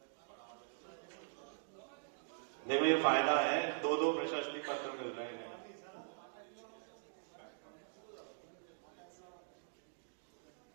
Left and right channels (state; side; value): silent; left; digital silence